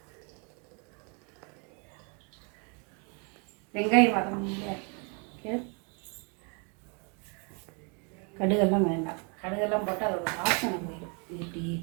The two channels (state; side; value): quieter; left; 35.5 dB